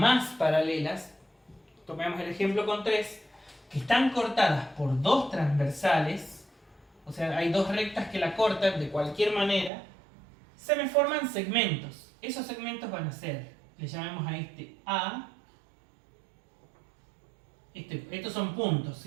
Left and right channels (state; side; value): drops out; left; at 9.7 s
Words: paralelas, tomemos el ejemplo con 3, que están cortadas por 2 transversales, o sea, hay 2 rectas que la cortan de cualquier manera, se me forman segmentos. Esos segmentos van a ser, le llamamos a este A, estos son puntos,